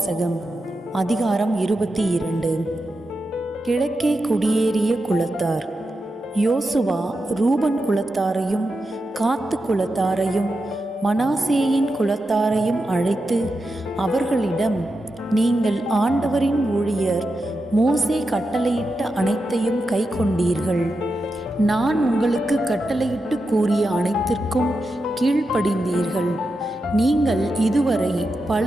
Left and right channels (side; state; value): both; normal; correlation 0.89